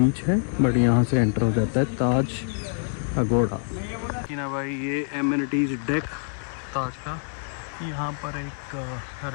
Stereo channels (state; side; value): silent; right; digital silence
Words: है, बट यहाँ से एंटर हो जाता है ताज अगोड़ा। कि ना भाई, ये एमिनिटीज़ डेक ताज का। यहाँ पर एक